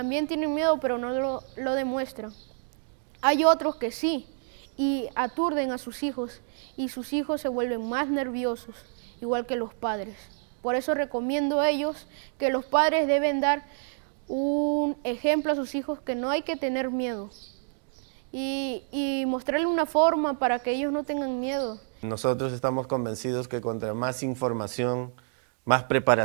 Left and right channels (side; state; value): left; silent; 58 dB below the other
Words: tienen miedo, pero no lo demuestran. Hay otros que sí, y aturden a sus hijos, y sus hijos se vuelven más nerviosos, igual que los padres. Por eso recomiendo a ellos que los padres deben dar un ejemplo a sus hijos, que no hay que tener miedo, y mostrarle una forma para que ellos no tengan miedo. Nosotros estamos convencidos que contra más información, más